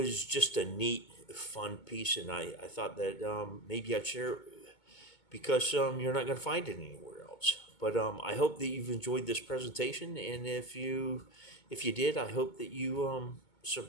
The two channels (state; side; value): late; right; 2.2 ms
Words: just a neat, fun piece, and I thought that maybe I'd share it, because you're not going to find it anywhere else. But I hope that you've enjoyed this presentation, and if you did, I hope that you